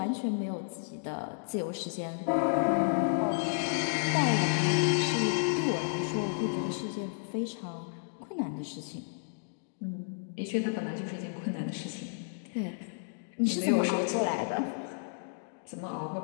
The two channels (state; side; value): silent; right; digital silence